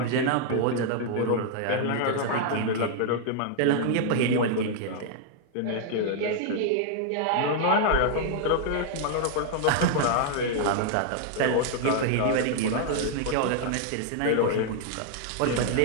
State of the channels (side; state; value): both; different; correlation 0.00